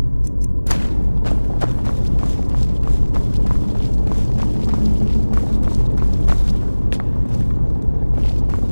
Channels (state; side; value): inverted; both; correlation -1.00